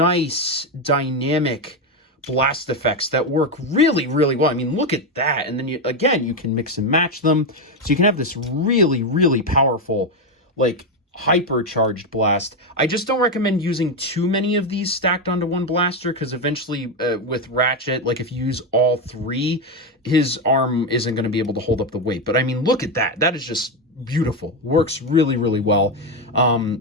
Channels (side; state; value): both; normal; correlation 0.09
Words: dynamic blast effects that work really, really well. I mean, look at that. And then you, again, you can mix and match them. So you can have this really, really powerful, like, hypercharged blast. I just don't recommend using too many of these stacked onto one blaster, because eventually with Ratchet, like if you use all 3, his arm isn't going to be able to hold up the weight. But I mean, look at that. That is just beautiful. Works really, really well.